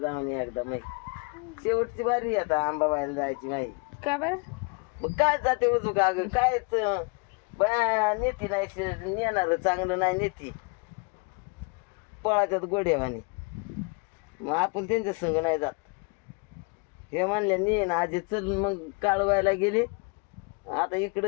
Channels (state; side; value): quieter; right; 32.1 dB